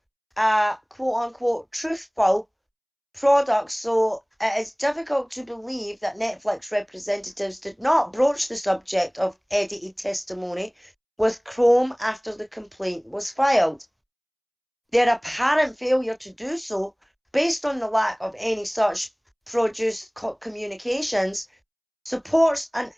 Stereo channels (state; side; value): identical; both; correlation 1.00